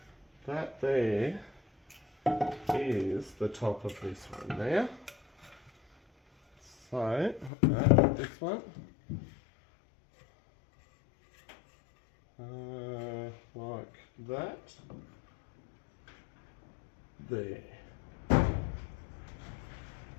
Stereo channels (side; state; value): right; drops out; at 7.5 s